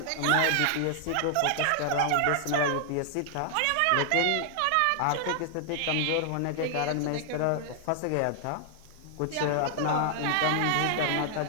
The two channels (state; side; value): different; both; correlation 0.00